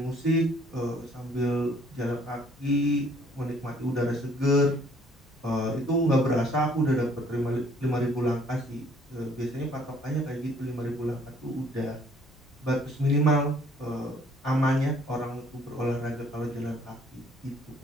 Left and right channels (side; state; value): both; normal; correlation 0.61